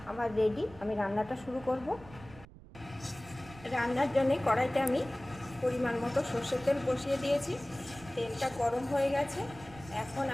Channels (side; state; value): right; noise; rumble, 19 dB below the sound